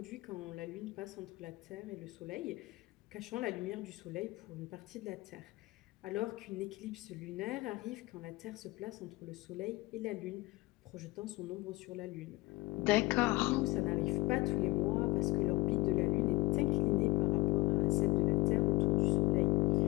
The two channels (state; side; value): quieter; right; 20.8 dB